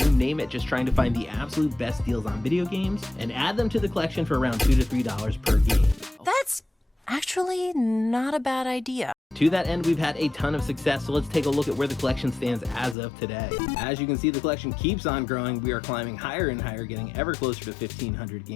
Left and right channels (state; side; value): drops out; right; at 13.0 s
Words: name it, just trying to find the absolute best deals on video games and add them to the collection for around $2 to $3 per game. That's actually not a bad idea. To that end, we've had a ton of success, so let's take a look at where the collection stands as of today. As you can see, the collection keeps on growing. We are climbing higher and higher, getting ever closer to 1,500